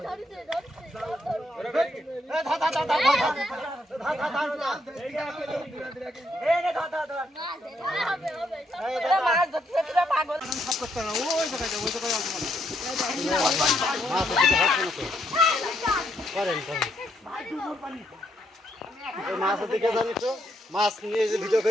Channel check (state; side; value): normal; both; correlation 0.75